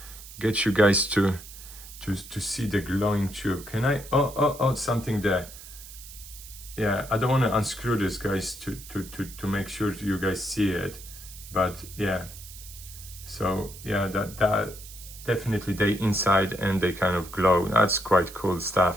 you guys to see the glowing tube. Can I? Oh, something there. Yeah, I don't want to unscrew this, guys, to make sure you guys see it. But yeah, so yeah, that definitely they inside and they kind of glow. That's quite cool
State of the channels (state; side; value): noise; right; hiss, 16 dB below the sound